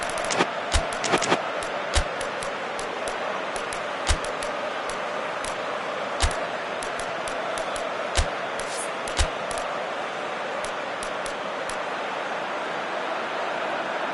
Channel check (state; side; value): identical; both; correlation 1.00